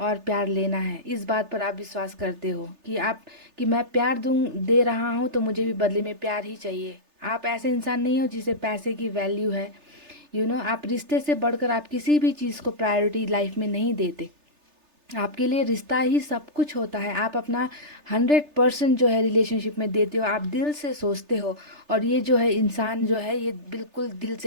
प्यार लेना है, इस बात पर आप विश्वास करते हो कि मैं प्यार दे रहा हूँ तो मुझे भी बदले में प्यार ही चाहिए। आप ऐसे इंसान नहीं हो जिसे पैसे की वैल्यू है। आप रिश्ते से बढ़कर आप किसी भी चीज़ को प्रायोरिटी लाइफ में नहीं देते। आपके लिए रिश्ता ही सब कुछ होता है। आप अपना 100% जो है रिलेशनशिप में देते हो, आप दिल से सोचते हो। और ये जो है इंसान जो है ये बिल्कुल दिल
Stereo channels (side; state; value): left; late; 3.3 ms